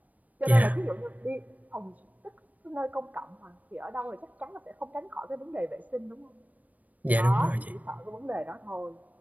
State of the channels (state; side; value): late; left; 0.075 ms